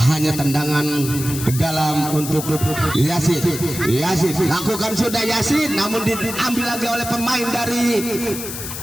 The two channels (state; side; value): noise; left; hiss, 8 dB below the sound